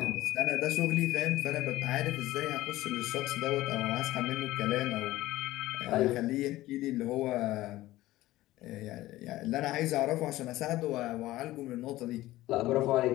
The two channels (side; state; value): right; quieter; 16.6 dB